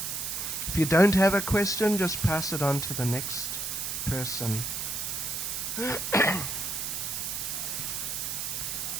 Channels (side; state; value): right; noise; hiss, 3 dB below the sound